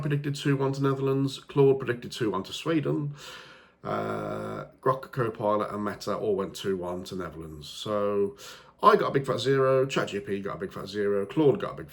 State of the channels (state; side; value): identical; both; correlation 1.00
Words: 2-1 to Netherlands. Claude predicted 2-1 to Sweden. Grok, Copilot and Meta all went 2-1 to Netherlands. So I got a big fat 0, ChatGPT got a big fat 0, Claude got a big